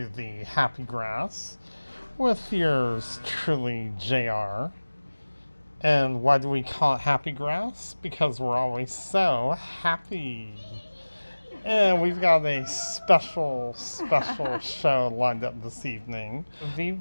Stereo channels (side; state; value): both; inverted; correlation -1.00